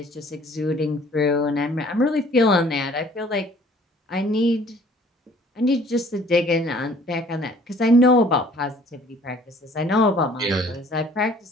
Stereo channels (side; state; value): both; normal; correlation 0.55